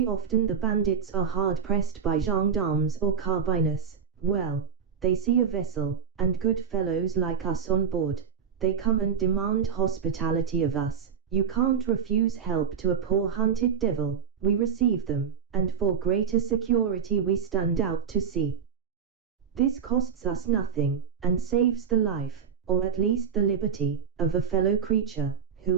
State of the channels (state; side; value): quieter; left; 6.9 dB